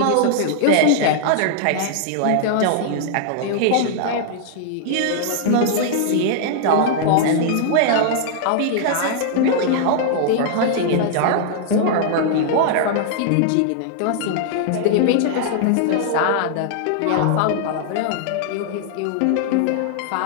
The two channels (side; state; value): both; different; correlation -0.01